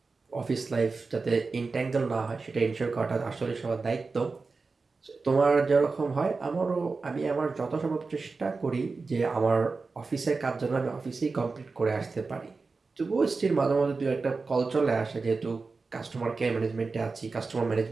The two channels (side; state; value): left; quieter; 4.2 dB